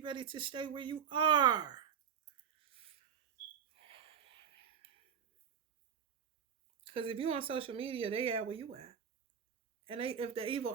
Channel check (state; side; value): quieter; left; 7.7 dB